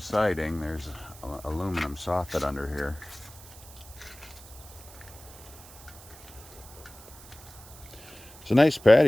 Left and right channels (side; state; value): right; noise; hiss, 19 dB below the sound